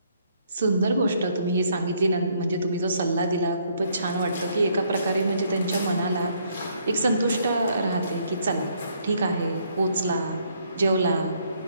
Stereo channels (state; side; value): inverted; both; correlation -0.69